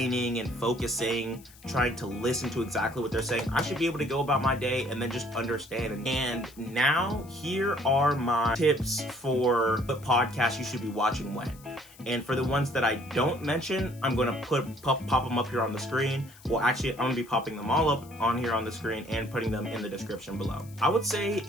and focusing, trying to listen to exactly what they're saying. I should be able to go about my day and then just understand. And now here are my tips for what podcasts you should be watching when. And for the ones that I don't mention, I'm going to pop them up here on the screen. Well, actually, I'm going to be popping them all up on here on the screen and putting them in the description below. I would say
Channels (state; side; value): noise; left; hiss, 23 dB below the sound